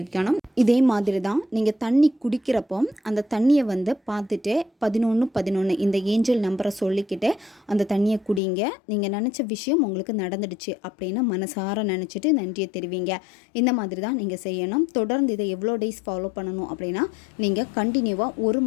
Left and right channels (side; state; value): right; drops out; at 8.4 s